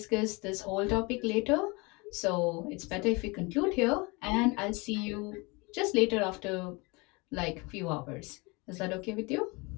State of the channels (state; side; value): quieter; right; 26.9 dB